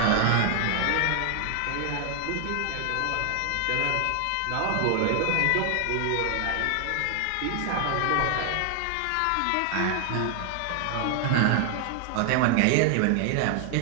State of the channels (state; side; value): different; both; correlation 0.00